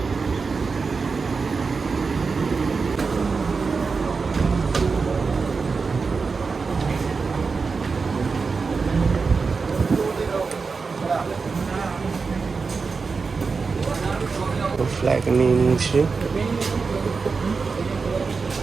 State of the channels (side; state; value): left; quieter; 4.7 dB